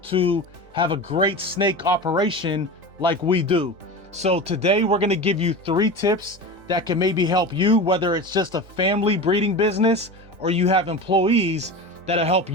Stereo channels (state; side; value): late; left; 3.4 ms